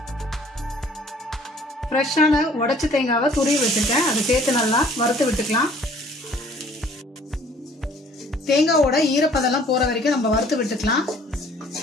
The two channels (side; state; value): both; normal; correlation 0.56